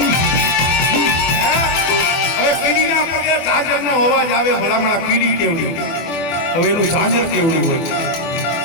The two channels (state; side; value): late; right; 24 ms